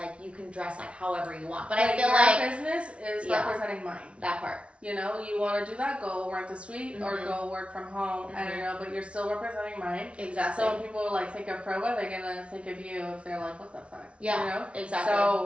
you can dress like however you want. But I feel your like business is Yeah. representing mine. that part. You know, you want to do that, go rent a suite or Mhm. go work from home. I don't know, but you're still representing mine. Exactly. So when people like think of Proba, they're gonna think of you if they're like, what the fuck? Yeah, You know? exactly.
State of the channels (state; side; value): late; left; 0.060 ms